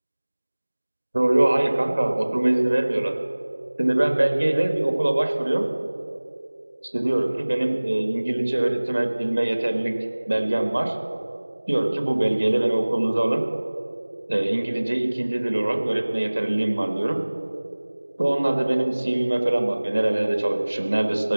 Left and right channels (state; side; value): inverted; both; correlation -1.00